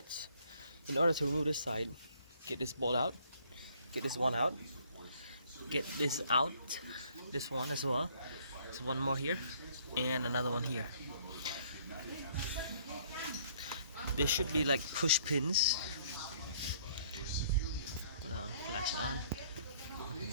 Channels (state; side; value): inverted; both; correlation -0.62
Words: In order to remove this side, get this bolt out, get this one out, get this out, this one as well. There's one more here and another one here. There should be like push pins. Hold on, flash it on.